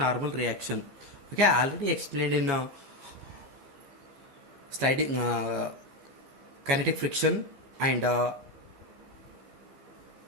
reaction. Okay, I already explained in sliding kinetic friction and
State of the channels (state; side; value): late; left; 14 ms